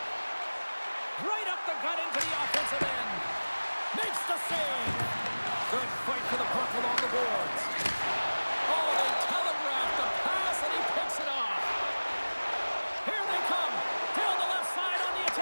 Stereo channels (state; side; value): inverted; both; correlation -1.00